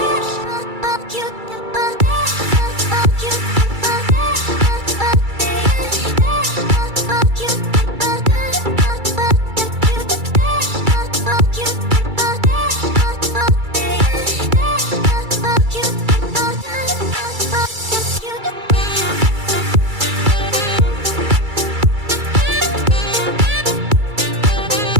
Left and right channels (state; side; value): late; left; 2.3 ms